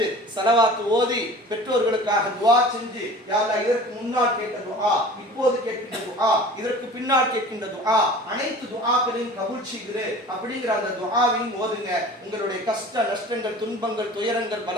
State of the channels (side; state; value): both; normal; correlation 0.42